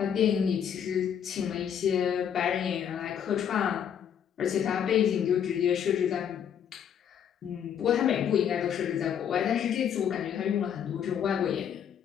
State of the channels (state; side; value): quieter; right; 8.6 dB